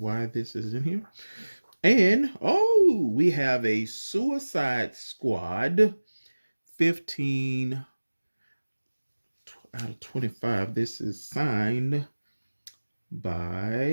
this is in here. And we have a Suicide Squad 15 out of 25. This is signed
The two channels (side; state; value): both; inverted; correlation -1.00